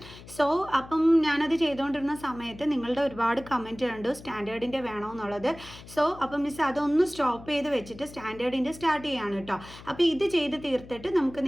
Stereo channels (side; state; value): left; noise; hum, 18 dB below the sound